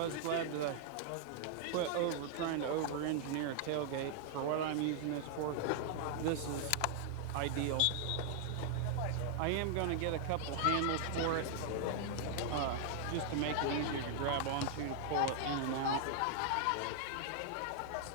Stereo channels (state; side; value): different; both; correlation -0.01